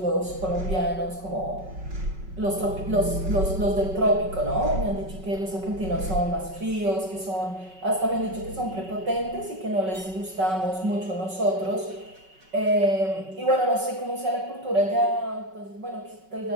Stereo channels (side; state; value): left; late; 5.3 ms